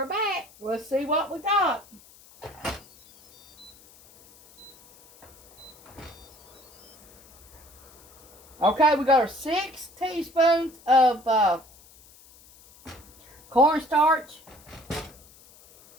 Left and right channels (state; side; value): noise; left; hiss, 25 dB below the sound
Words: back. Let's see what we got. Okay, we got our 6 teaspoons of cornstarch.